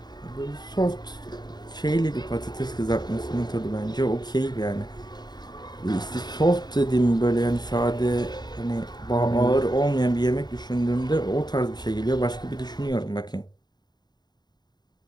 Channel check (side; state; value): right; late; 0.20 ms